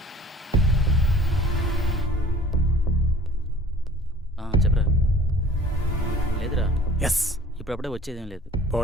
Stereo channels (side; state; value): both; normal; correlation 0.49